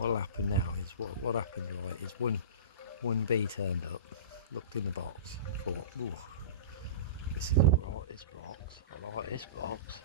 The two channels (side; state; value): both; inverted; correlation -0.31